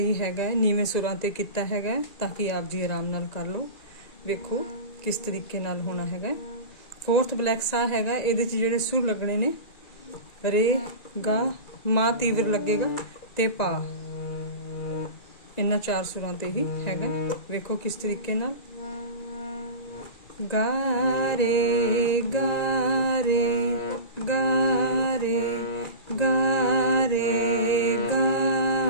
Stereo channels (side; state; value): right; late; 1.9 ms